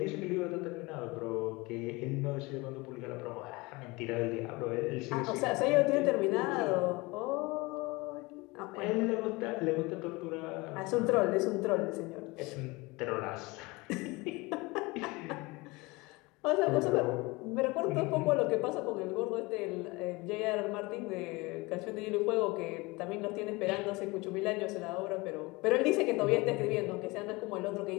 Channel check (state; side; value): quieter; right; 23.9 dB